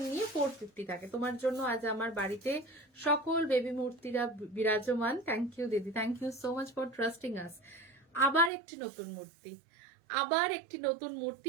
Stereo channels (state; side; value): drops out; left; at 8.5 s